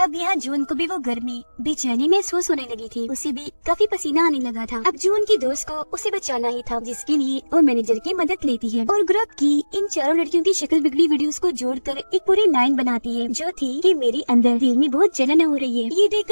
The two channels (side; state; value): both; inverted; correlation -1.00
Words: अब यहाँ जून को भी वो गर्मी बेचैनी महसूस होने लगी थी। उसे भी काफी पसीना आने लगा था। अब जून की दोस्त को उसे बचाना ही था, जिसके लिए वो मैनेजर की मदद लेती है और ग्रुप की इन 4 लड़कियों की शक्ल बिगड़ी वीडियोस को जोड़कर एक पूरी लाइन बनाती है जो थी कि मेरे अंदर दिल में बहुत जलन हो रही है। ये